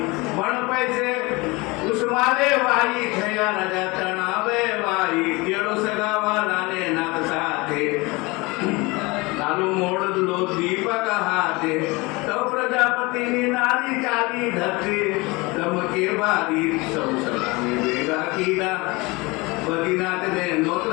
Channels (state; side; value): quieter; right; 24.5 dB